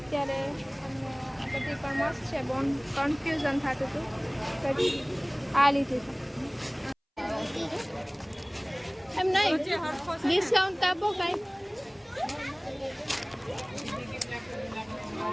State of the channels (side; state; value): both; identical; correlation 1.00